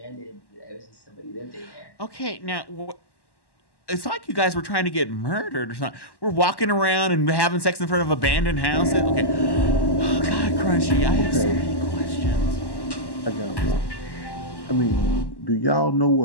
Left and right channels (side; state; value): right; late; 1.1 ms